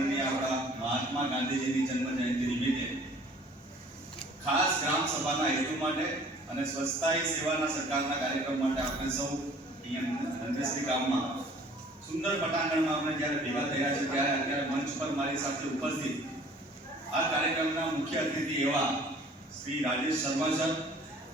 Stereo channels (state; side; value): normal; both; correlation 0.52